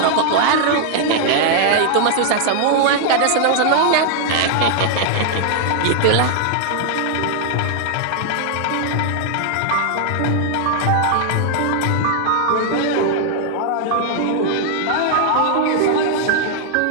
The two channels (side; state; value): both; different; correlation 0.00